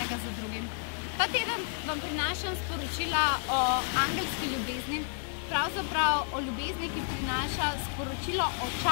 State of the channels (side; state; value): right; silent; 57 dB below the other